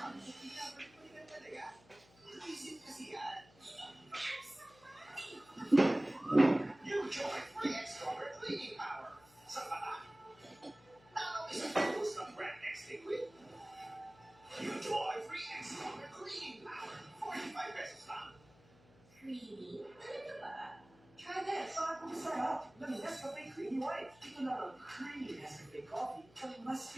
Balikan talaga. Isip kasi yan. New Joy Free Extra Cleaning Power. Sa pata. Now is a focus ng Brand X Liquid. New Joy Free Extra Cleaning Power. 45 pesos lang. Creamy? Ano ba? Try this! Bago masarap! The Nescafe Creamy White. Ito na ang creamy Nescafe coffee na mas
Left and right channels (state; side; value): noise; left; hum, 26 dB below the sound